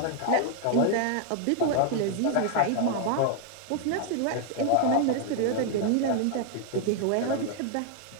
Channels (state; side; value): different; both; correlation 0.00